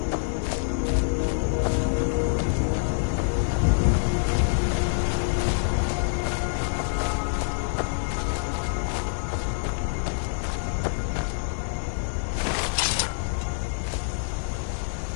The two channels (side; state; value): right; silent; digital silence